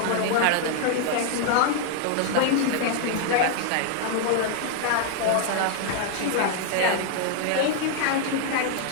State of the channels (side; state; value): both; different; correlation -0.01